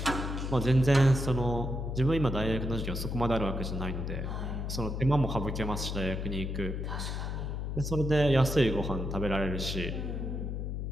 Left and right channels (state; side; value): noise; left; hum, 3 dB below the sound